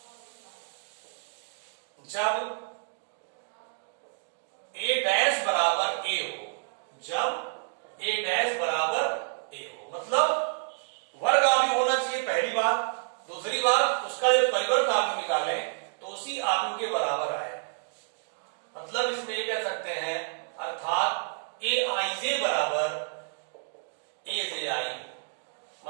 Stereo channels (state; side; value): silent; left; digital silence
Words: जब A डैश बराबर A हो, जब A डैश बराबर A हो, मतलब वर्ग आव्यूह होना चाहिए पहली बात, दूसरी बात उसका जब परिवर्त आव्यूह निकालें तो उसी आव्यूह के बराबर आए, मतलब इसमें ये कह सकते हैं, अर्थात AIJ बराबर ए से आई हो,